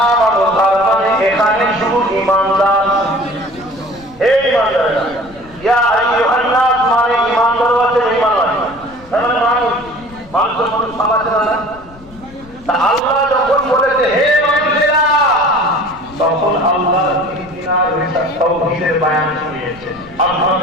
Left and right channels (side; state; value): left; noise; rumble, 22 dB below the sound